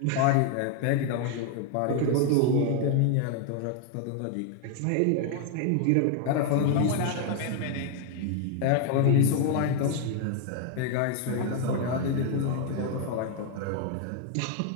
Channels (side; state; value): both; different; correlation 0.01